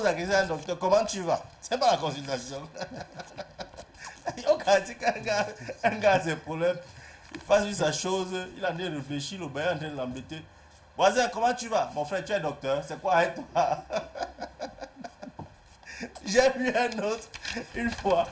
la question à un docteur, comment tu vas? C'est pas la consultation. Un gars a ses problèmes. Il fasse lui sa chose. Il est en train de réfléchir. Le bain est en train de l'embêter. Voisin, comment tu vas? Mon frère, tu es docteur. C'est quoi avec toi? J'ai vu un autre. Une fois,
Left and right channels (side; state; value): both; identical; correlation 1.00